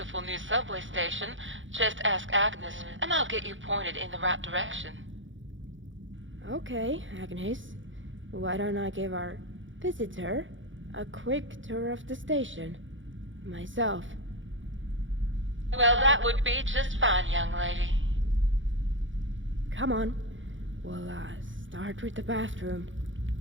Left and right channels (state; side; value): late; left; 0.56 ms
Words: new subway station, just ask Agnes and I'll get you pointed in the right direction. Okay, Agnes. Why don't I give our visitor a quick tour of the station? Myself. Well, that would be just fine, young lady. Come on. We'll start with the bathroom.